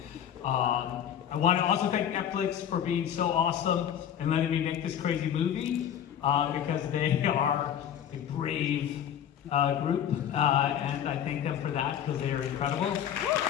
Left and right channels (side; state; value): right; quieter; 9.6 dB